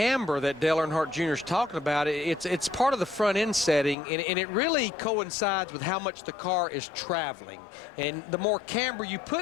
that Dale Earnhardt Jr. is talking about, it's part of the front end setting, and it really coincides with how much the car is traveling. And the more camber you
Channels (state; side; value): drops out; right; at 4.0 s